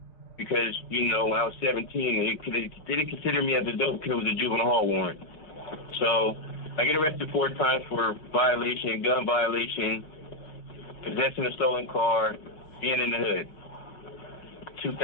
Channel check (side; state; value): right; late; 5.5 ms